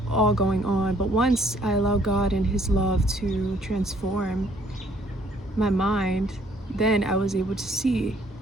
all going on. But once I allowed God and his love to transform my mind, then I was able to see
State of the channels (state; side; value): normal; both; correlation 0.63